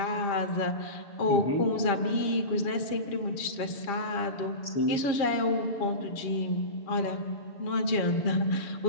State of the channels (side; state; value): right; late; 7.4 ms